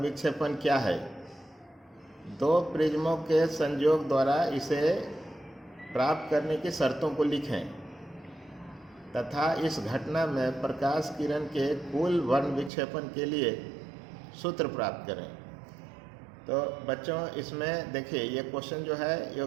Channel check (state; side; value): drops out; left; at 12.7 s